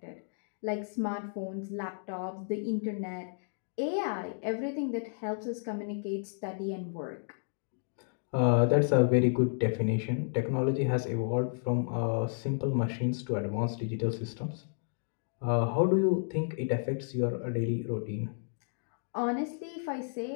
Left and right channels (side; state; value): right; silent; digital silence